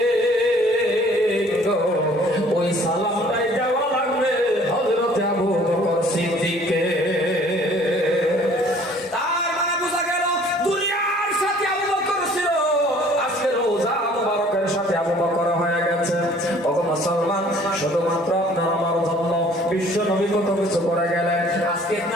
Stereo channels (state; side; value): normal; both; correlation 0.54